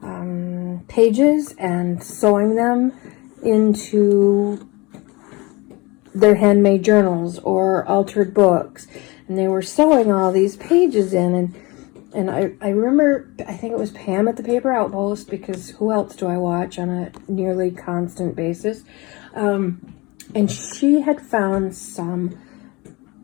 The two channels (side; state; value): right; quieter; 24.8 dB